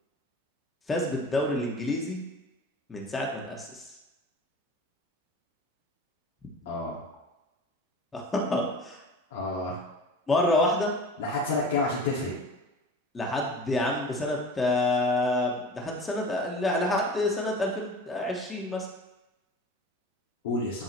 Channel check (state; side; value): normal; both; correlation 0.38